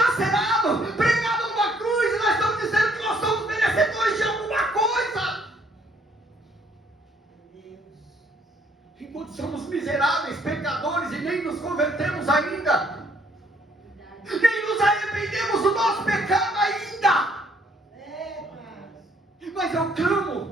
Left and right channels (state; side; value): normal; both; correlation 0.65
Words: pregado numa cruz, e nós estamos dizendo que nós somos merecedores de alguma coisa. Enquanto somos miseráveis, pecadores, e nem nos convertemos ainda, nem nos arrependemos do nosso pecado ainda. Mas eu